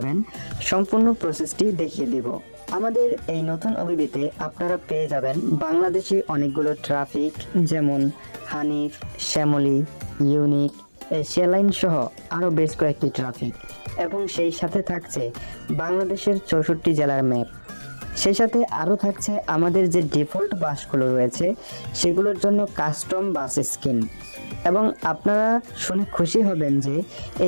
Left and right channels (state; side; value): inverted; both; correlation -1.00